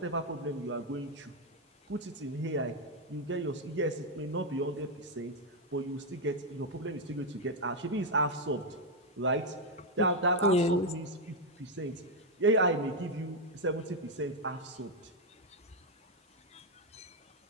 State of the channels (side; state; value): both; normal; correlation 0.02